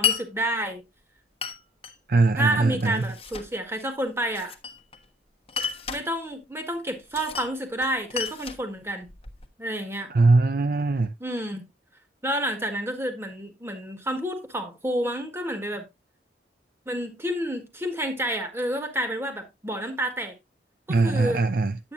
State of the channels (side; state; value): both; normal; correlation 0.67